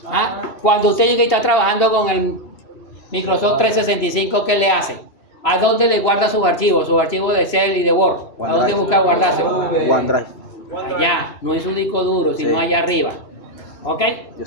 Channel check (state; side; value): late; right; 3.0 ms